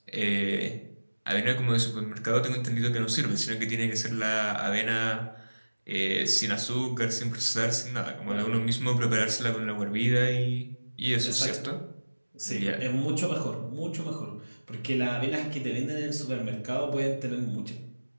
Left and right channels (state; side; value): inverted; both; correlation -1.00